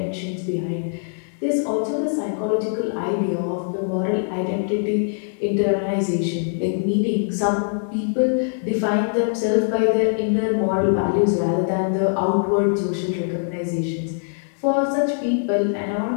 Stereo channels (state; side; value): silent; right; digital silence